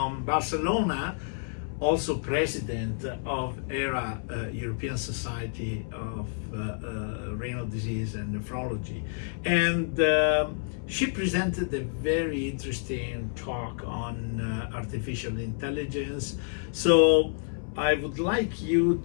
Barcelona, also president of ERA, European Society of Renal Disease and Nephrology. And she presented a very interesting talk on artificial intelligence. So I would like you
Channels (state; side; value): silent; right; 59 dB below the other